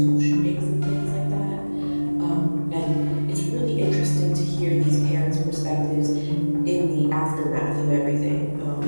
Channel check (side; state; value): both; inverted; correlation -1.00